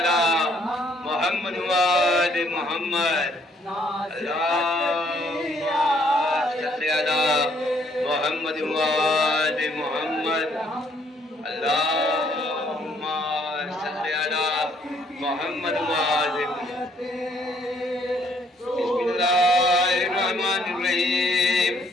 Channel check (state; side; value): normal; both; correlation 0.66